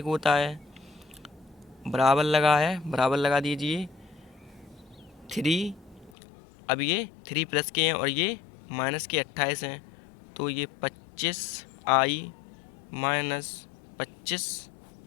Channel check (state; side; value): drops out; right; at 6.1 s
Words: होता है। बराबर लगा है, बराबर लगा दीजिए। 3, अब ये 3 प्लस के हैं और ये माइनस के 28 हैं, तो ये 25i - 25